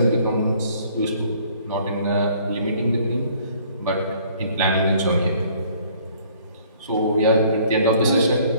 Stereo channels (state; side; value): inverted; both; correlation -0.58